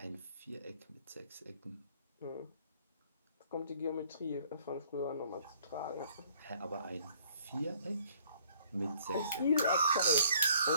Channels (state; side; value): inverted; both; correlation -0.61